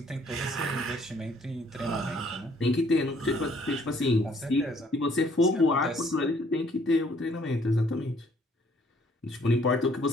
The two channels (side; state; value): both; normal; correlation 0.62